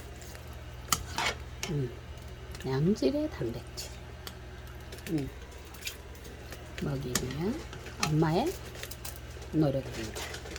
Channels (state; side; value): identical; both; correlation 1.00